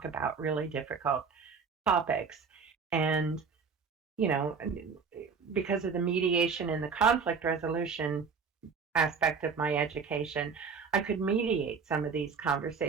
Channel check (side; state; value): left; quieter; 5.5 dB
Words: about really difficult topics. And you know because of the mediation and the conflict resolution aspect of my education, I could mediate some of these